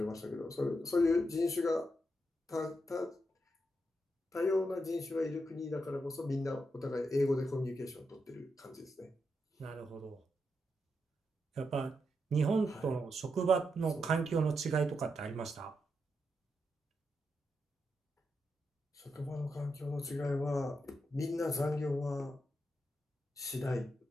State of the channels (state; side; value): normal; both; correlation 0.84